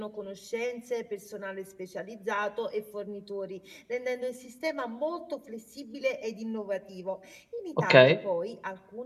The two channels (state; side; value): identical; both; correlation 1.00